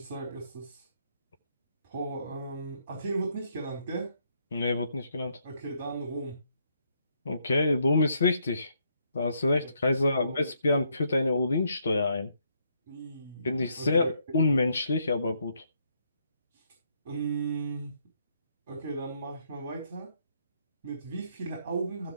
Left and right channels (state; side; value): inverted; both; correlation -0.73